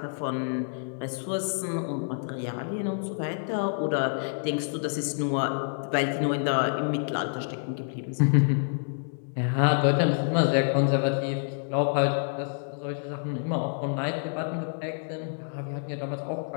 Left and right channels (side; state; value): right; silent; digital silence